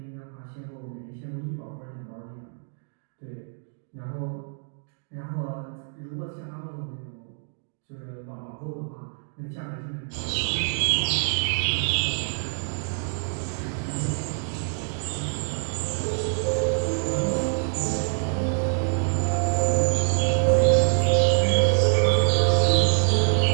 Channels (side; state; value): left; silent; digital silence